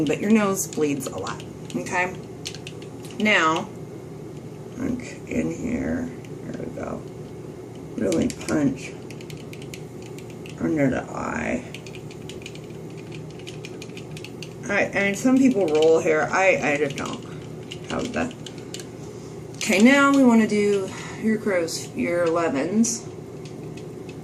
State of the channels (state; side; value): identical; both; correlation 1.00